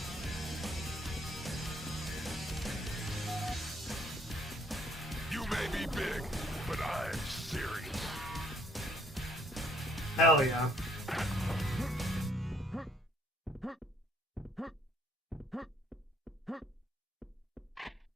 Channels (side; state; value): both; normal; correlation 0.65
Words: You may be big, but I'm serious. Hell yeah.